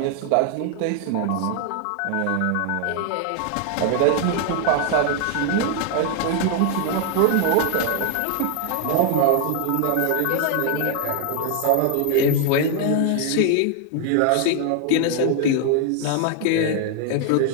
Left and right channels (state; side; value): different; both; correlation 0.00